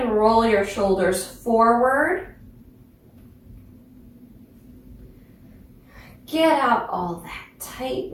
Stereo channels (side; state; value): both; identical; correlation 1.00